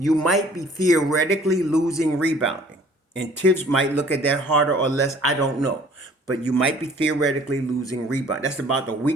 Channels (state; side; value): normal; both; correlation 0.54